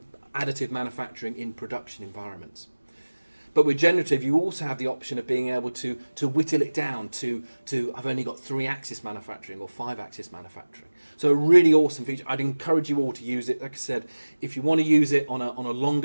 additive manufacturing in production environments. But with generative, you also have the option of being able to whittle it down to I've only got 3-axis manufacturing or 5-axis manufacturing. So a really awesome feature. I'd encourage you all to use it. Like I said, if you want to use it on a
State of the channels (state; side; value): inverted; both; correlation -1.00